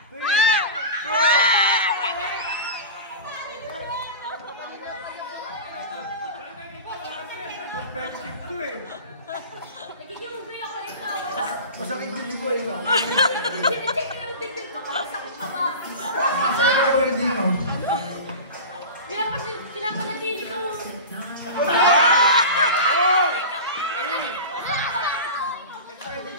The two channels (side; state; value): both; inverted; correlation -0.31